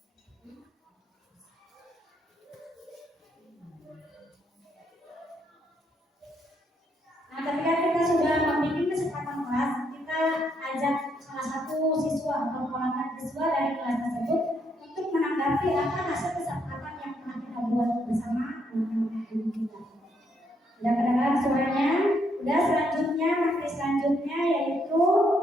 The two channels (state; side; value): normal; both; correlation 0.74